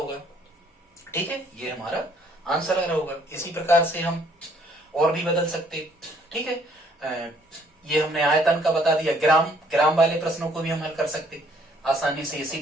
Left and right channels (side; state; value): both; normal; correlation 0.63